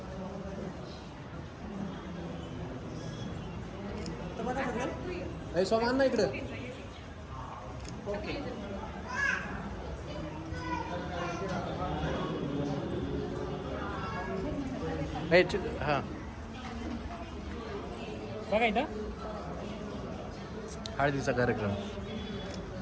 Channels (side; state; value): both; identical; correlation 1.00